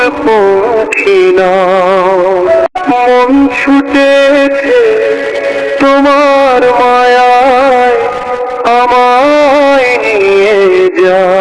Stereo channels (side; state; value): both; identical; correlation 1.00